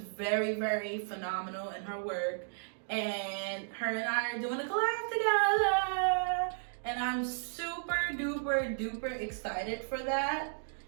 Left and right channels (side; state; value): left; silent; digital silence